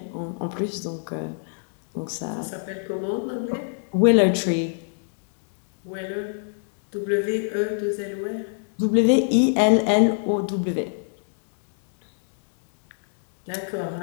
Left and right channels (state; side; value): silent; right; digital silence